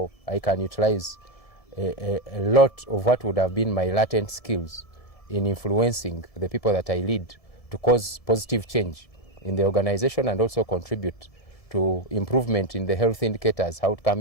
I can utilize a lot of what would have been my latent skills in influencing the people that I lead to cause positive change in the organization and also contribute to improvement in the health indicators, outcome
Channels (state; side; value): late; right; 1.7 ms